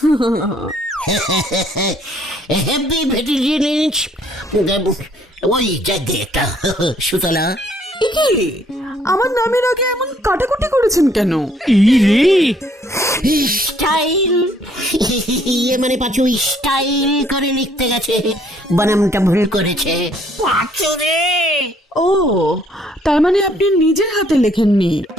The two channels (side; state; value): both; normal; correlation 0.65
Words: হেভি ভেটিলিন, ওই জায়গায় একটা। সুতলা, এ কি, আমার নামের আগে এমন কাটাকুটি করেছেন কেন? স্টাইল, ইয়ে মানে পাঁচু স্টাইল করে লিখতে গেছে, বানামটা ভুল করেছে। ও, তার মানে আপনি নিজের হাতে লেখেননি?